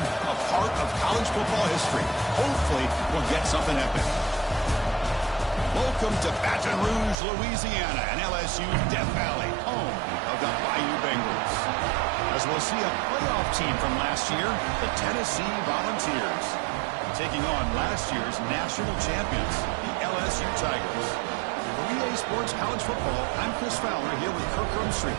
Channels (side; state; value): left; drops out; at 7.2 s